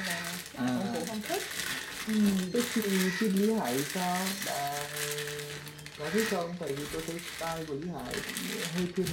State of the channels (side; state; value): both; identical; correlation 1.00